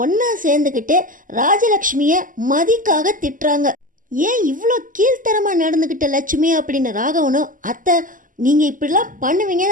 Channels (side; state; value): left; late; 0.39 ms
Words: ஒன்றா சேர்ந்துக்கிட்டு ராஜலக்ஷ்மியை மதிக்காக திட்டுறாங்க. ஏன் இவ்வளோ கீழ்த்தரமாக நடந்துக்கிட்ட லட்சுமி அப்படின்னு ராகவனும், அத்தை நீங்கள் இப்படிலாம் பண்ணுவீங்க